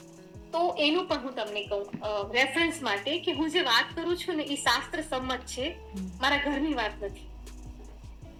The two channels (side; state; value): both; identical; correlation 1.00